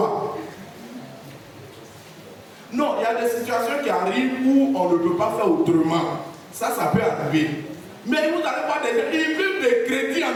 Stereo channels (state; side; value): identical; both; correlation 1.00